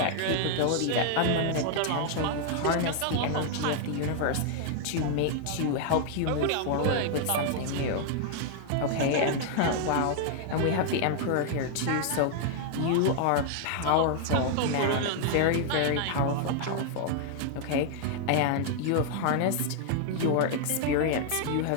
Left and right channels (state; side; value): different; both; correlation 0.00